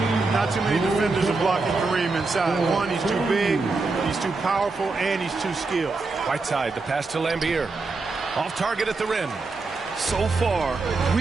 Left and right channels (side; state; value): left; quieter; 3.8 dB